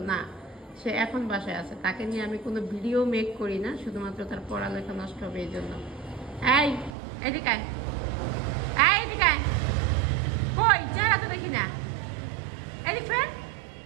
না, সে এখন বাসায় আছে। তাকে নিয়ে আমি কোনো ভিডিও মেক করি না, শুধুমাত্র তার পড়ালেখা নষ্ট হবে এই জন্য। এই এদিকে আয়, এদিকে আয়। কই চেহারা তো দেখি না, এদিকে।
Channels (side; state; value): left; drops out; at 7.0 s